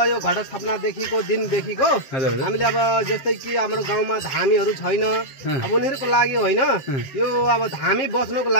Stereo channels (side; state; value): right; late; 7.5 ms